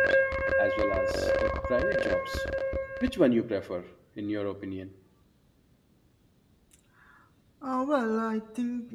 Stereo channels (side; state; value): both; identical; correlation 1.00